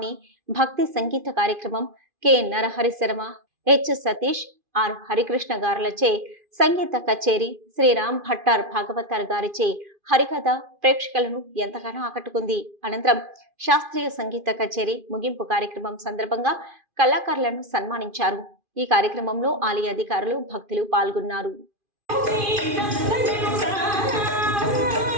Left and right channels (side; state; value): left; late; 2.5 ms